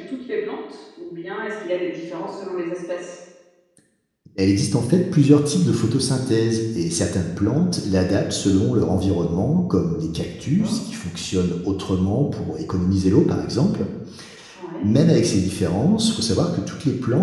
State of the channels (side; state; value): both; identical; correlation 1.00